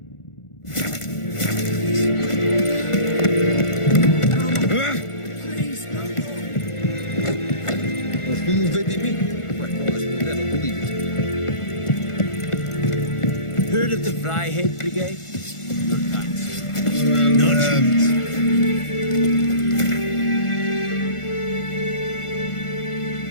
Heard of the Vryheid Brigade?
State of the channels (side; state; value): right; late; 1.4 ms